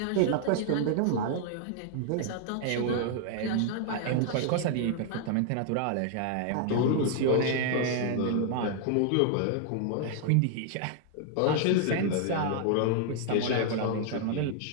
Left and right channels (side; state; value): both; different; correlation 0.00